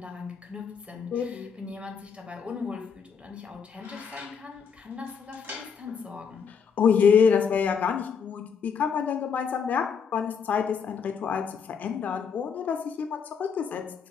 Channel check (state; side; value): quieter; right; 6.5 dB